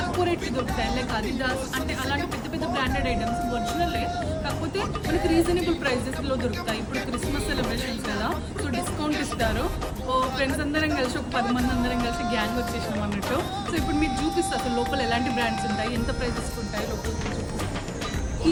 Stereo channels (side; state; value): both; identical; correlation 1.00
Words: రేట్కి దొరుకుతాయి. లైక్ అడిడాస్ అంటే అలాంటి పెద్ద పెద్ద బ్రాండెడ్ ఐటమ్స్ ఒరిజినలే, కాకపోతే మనకి రీజనబుల్ ప్రైజెస్లో దొరుకుతాయి. ఇప్పుడు క్రిస్మస్ సెలబ్రేషన్స్ కదా, సో డిస్కౌంట్ ఇస్తారు. ఓ ఫ్రెండ్స్ అందరం కలిసి ఒక 10 మంది అందరం కలిసి గ్యాంగ్ వచ్చేసినాం అన్నట్టు. సో ఇప్పుడు మీకు చూపిస్తా అసలు లోపల ఎలాంటి బ్రాండ్స్ ఉంటాయి, ఎంత ప్రైజెస్ ఉంటాయి లోపల. ఈ